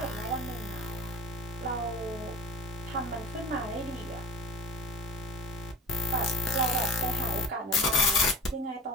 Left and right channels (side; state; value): both; normal; correlation 0.36